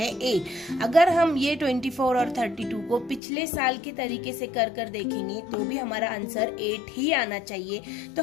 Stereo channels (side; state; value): right; drops out; at 3.2 s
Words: 8। अगर हम ये 24 और 32 को पिछले साल के तरीके से कर देखेंगे तो भी हमारा आंसर 8 ही आना चाहिए। तो